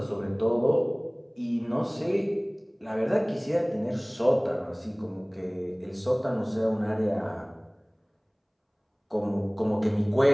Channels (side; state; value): both; identical; correlation 1.00